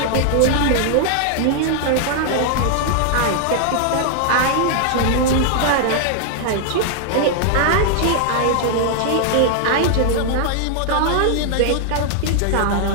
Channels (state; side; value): different; both; correlation 0.00